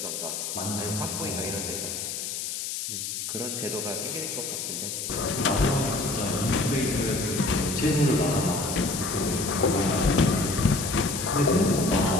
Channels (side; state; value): left; noise; hiss, 4 dB below the sound